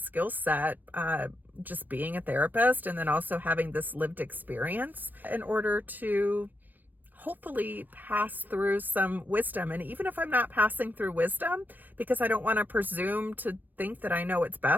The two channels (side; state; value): left; late; 0.085 ms